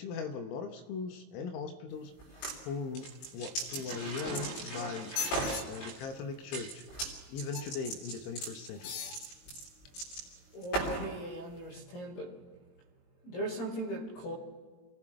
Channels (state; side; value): late; right; 22 ms